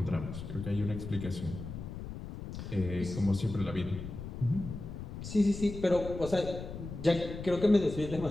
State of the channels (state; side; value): noise; left; rumble, 9 dB below the sound